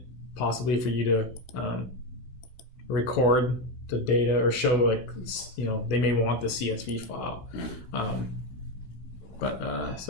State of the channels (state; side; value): late; right; 16 ms